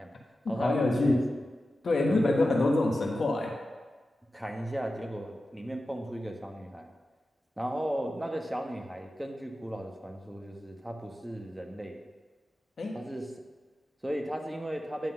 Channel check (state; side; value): normal; both; correlation 0.93